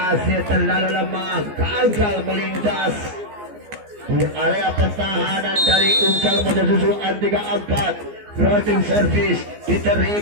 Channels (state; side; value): late; left; 14 ms